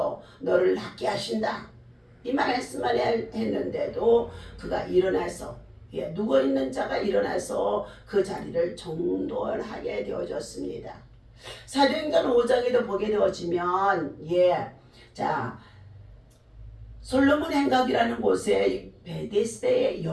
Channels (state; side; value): identical; both; correlation 1.00